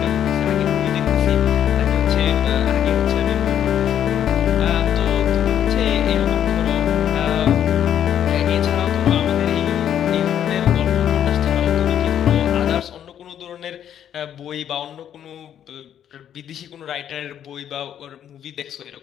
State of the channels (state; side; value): quieter; right; 9.8 dB